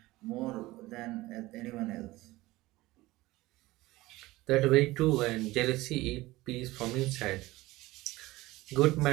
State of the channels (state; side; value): quieter; left; 18.9 dB